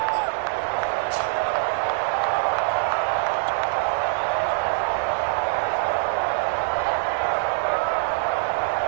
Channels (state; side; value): silent; left; digital silence